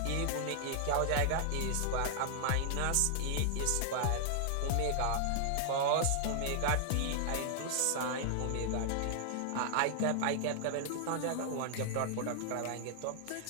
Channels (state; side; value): different; both; correlation -0.01